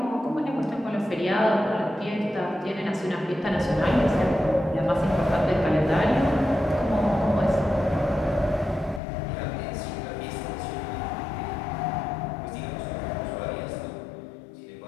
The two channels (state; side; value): drops out; right; at 9.0 s